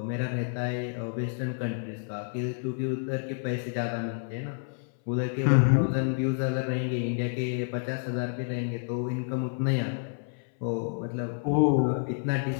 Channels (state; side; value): silent; right; 58 dB below the other